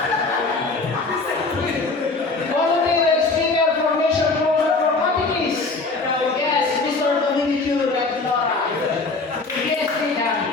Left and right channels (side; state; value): right; quieter; 3.7 dB